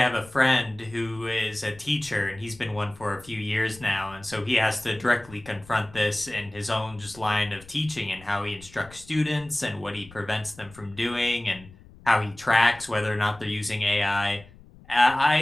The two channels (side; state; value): left; noise; rumble, 22 dB below the sound